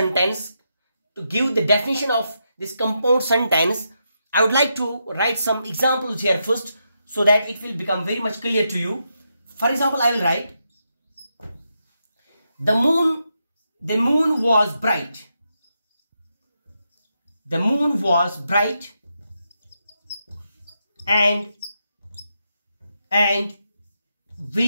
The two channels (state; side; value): inverted; both; correlation -0.84